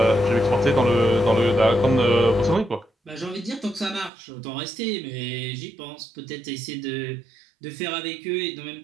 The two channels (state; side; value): drops out; left; at 4.1 s